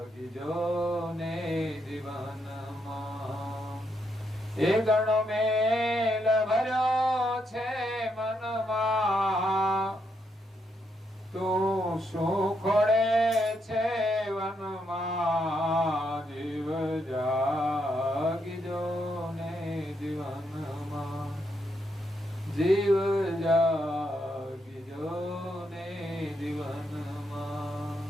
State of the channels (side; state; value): both; normal; correlation 0.79